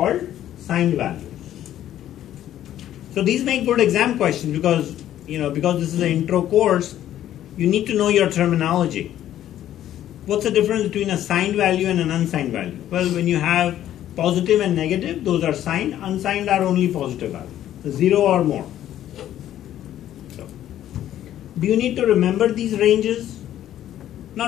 signed values. So these make good exam questions because, because this is an intro course, you need to know your terminology. What's the difference between a signed value and an unsigned value? Well, when you have positive and negative, those are signed. Unsigned are only positive values, 0 or more. So, do you need to remember these ranges?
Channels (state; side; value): quieter; right; 12.0 dB